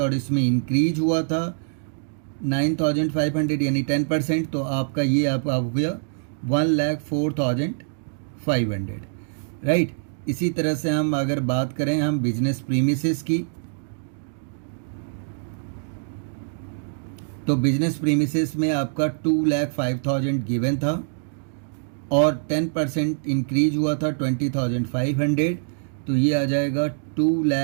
इसमें इंक्रीज हुआ था 9,500 यानी 10%। तो आपका ये आप हो गया 1,04,500, राइट। इसी तरह से हम अगर बात करें हम बिजनेस प्रीमिसेस की, तो बिजनेस प्रीमिसेस में आपका 2,05,000 गिवन था और 10% इंक्रीज हुआ था 20,500। तो ये आ जाएगा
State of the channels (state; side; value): silent; left; digital silence